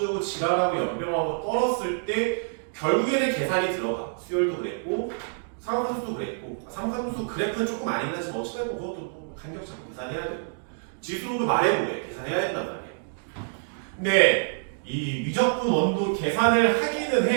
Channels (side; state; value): left; silent; digital silence